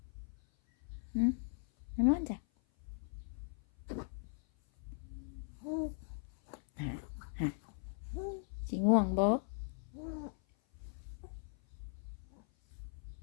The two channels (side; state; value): right; silent; 52 dB below the other